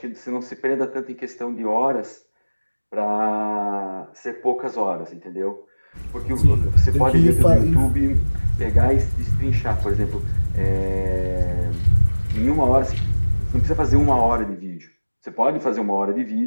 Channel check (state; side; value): inverted; both; correlation -1.00